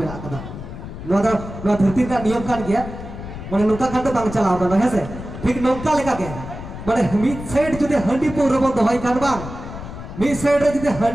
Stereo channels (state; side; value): noise; left; rumble, 11 dB below the sound